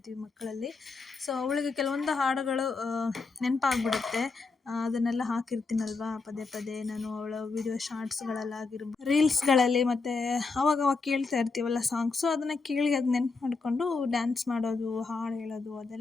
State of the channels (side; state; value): right; quieter; 4.2 dB